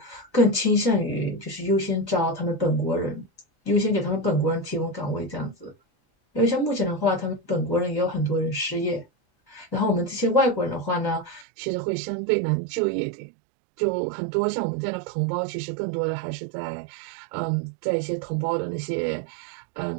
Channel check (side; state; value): left; drops out; at 11.5 s